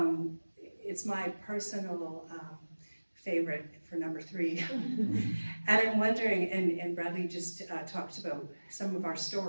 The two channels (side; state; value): both; inverted; correlation -1.00